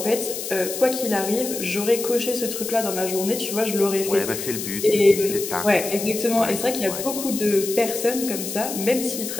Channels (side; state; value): left; noise; hiss, 6 dB below the sound